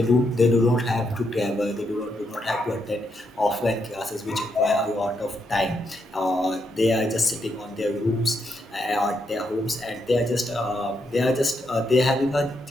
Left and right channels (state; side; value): normal; both; correlation 0.80